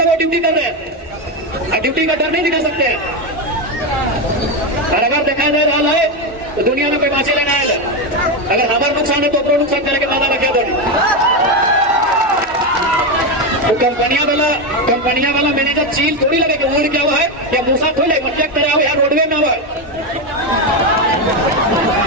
वो ड्यूटी कर रहे हैं, आप ड्यूटी का डर नहीं दिखा सकते हैं। और अगर देखा जा रहा है तो दुनिया में कोई बाँचे लेना है, अगर हमारा नुकसान है तो अपना नुकसान करने के बाद रखे दो। तो कंपनियां वाला मैनेजर चील थोड़ी लगे कि उड़ क्या हुआ है या मूसा थोड़ी लगे, चेक करा हो या रोडवे में हुआ है।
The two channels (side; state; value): both; normal; correlation 0.11